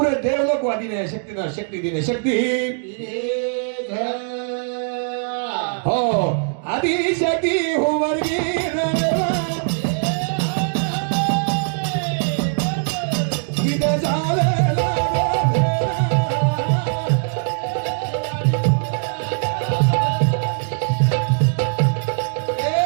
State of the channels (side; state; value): left; silent; 59 dB below the other